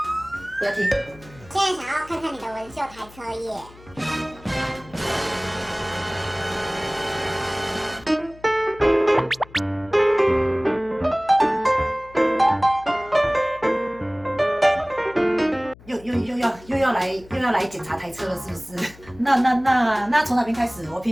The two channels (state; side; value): noise; left; hum, 22 dB below the sound